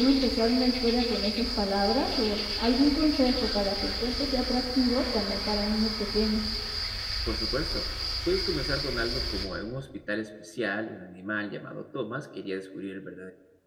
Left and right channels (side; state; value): both; identical; correlation 1.00